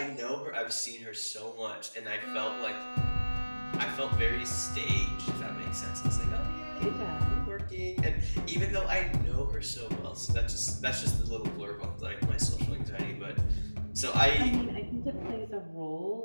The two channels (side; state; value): both; inverted; correlation -1.00